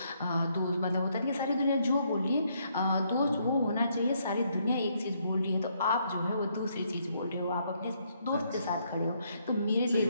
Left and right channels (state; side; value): inverted; both; correlation -0.73